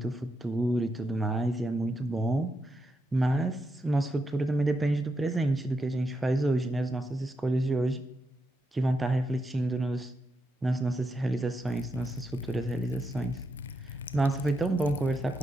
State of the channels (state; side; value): normal; both; correlation 0.84